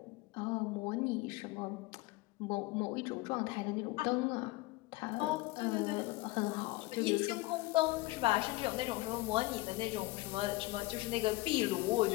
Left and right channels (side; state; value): right; quieter; 21.0 dB